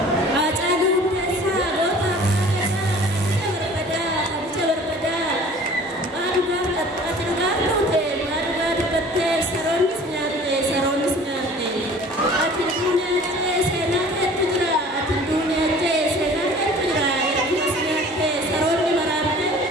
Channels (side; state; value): both; normal; correlation 0.47